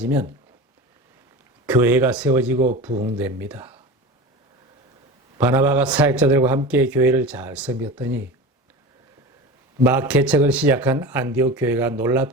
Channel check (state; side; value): normal; both; correlation 0.31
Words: 교회가 세워지고 부흥됩니다. 바나바가 사역자들과 함께 교회를 잘 섬겼더니 막 개척을 시작한 안디옥 교회가